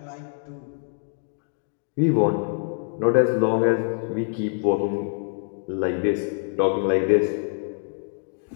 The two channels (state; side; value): silent; right; 57 dB below the other